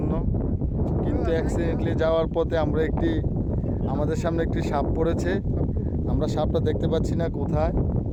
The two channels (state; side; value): identical; both; correlation 1.00